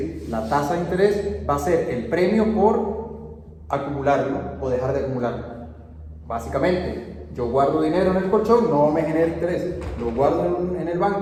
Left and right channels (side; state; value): both; identical; correlation 1.00